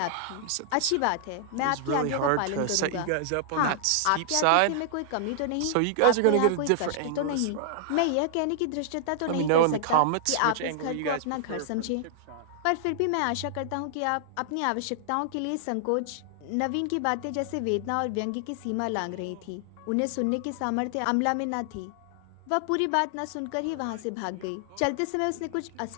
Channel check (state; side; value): different; both; correlation -0.01